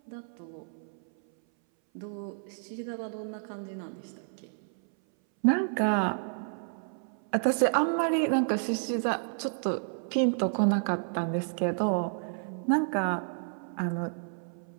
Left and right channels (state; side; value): silent; left; 57 dB below the other